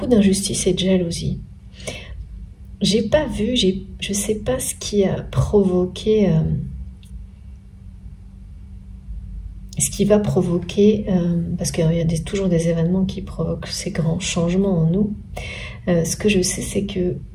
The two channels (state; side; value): identical; both; correlation 1.00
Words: d'injustice et de jalousie. J'ai pas vu, je sais pas ce qui a provoqué, ce qui va provoquer, parce qu'il y a toujours des événements qui provoquent ces grands changements en nous. Ce que je sais, c'est que